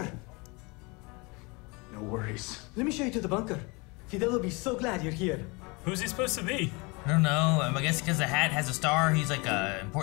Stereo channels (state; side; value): quieter; right; 27.6 dB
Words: No worries. Let me show you to the bunker. Fidel will be so glad you're here. Who's he supposed to be? I don't know. I guess because the hat has a star, he's like a